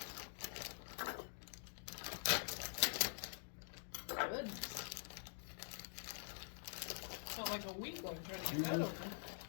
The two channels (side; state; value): right; silent; digital silence